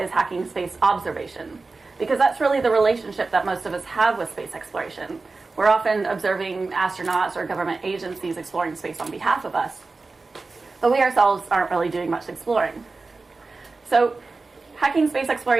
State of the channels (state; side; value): quieter; left; 3.8 dB